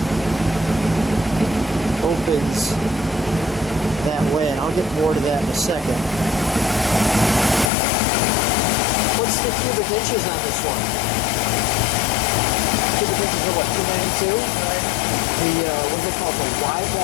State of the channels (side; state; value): right; drops out; at 7.7 s